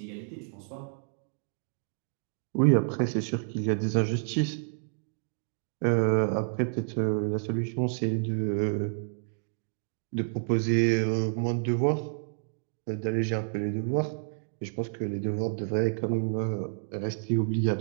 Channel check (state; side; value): silent; left; digital silence